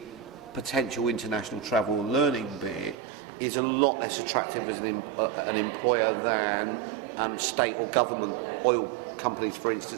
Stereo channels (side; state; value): left; drops out; at 3.0 s